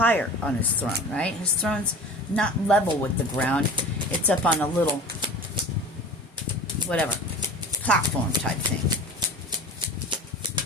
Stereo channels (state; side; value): normal; both; correlation 0.38